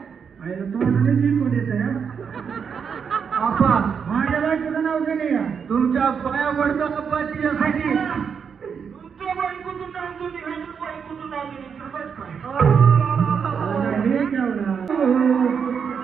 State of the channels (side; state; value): left; quieter; 6.7 dB